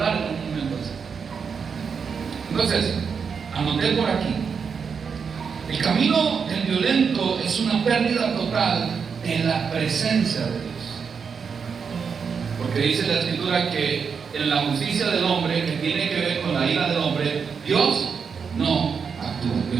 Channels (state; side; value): quieter; left; 6.1 dB